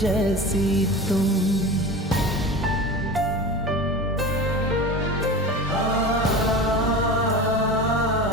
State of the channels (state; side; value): normal; both; correlation 0.31